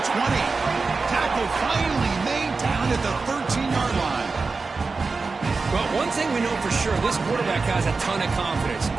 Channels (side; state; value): left; quieter; 4.2 dB